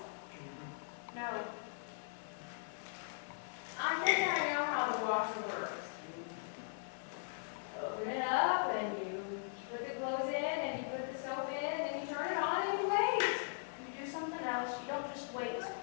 No. I think I know how the washer works. Open it up, and you put the clothes in, and you put the soap in, and you turn it on, and you wait. You do something else. You don't just wait.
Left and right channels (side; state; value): right; silent; 51 dB below the other